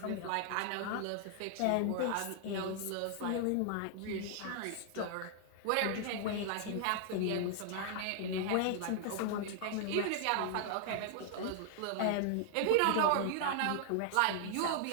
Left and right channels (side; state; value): both; different; correlation 0.00